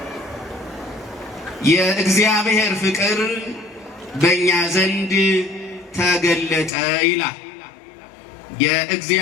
የእግዚአብሔር ፍቅር በእኛ ዘንድ ተገለጠ ይላል።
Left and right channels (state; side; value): drops out; right; at 6.7 s